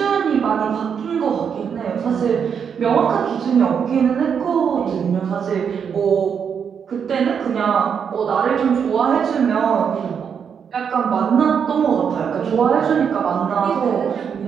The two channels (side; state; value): left; quieter; 7.2 dB